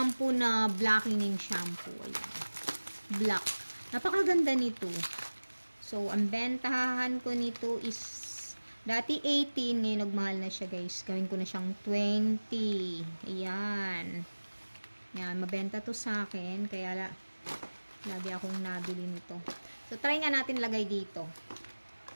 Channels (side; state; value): both; inverted; correlation -1.00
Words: na blackening shampoo. Ayan. Black. Napakaganda nito. So, ang bentahan ko nito is dati 18. Ngayon nagmahal na siya, guys. Gawin ko na siyang 20. Ayan. Ayan. Mabenta to sa akin. Kaya lagi akong nabili nito. So, try nga natin lagay dito.